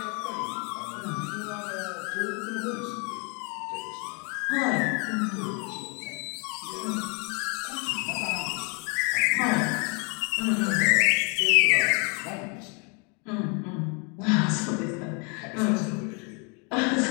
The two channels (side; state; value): right; quieter; 33.9 dB